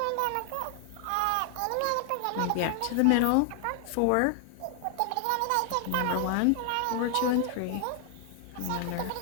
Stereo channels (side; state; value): both; different; correlation 0.00